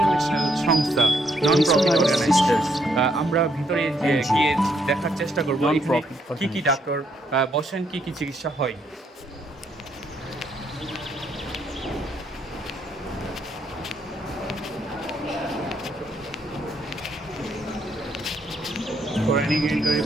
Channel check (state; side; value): normal; both; correlation 0.73